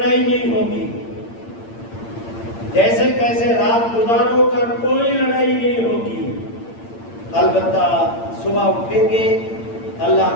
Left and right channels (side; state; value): right; late; 8.8 ms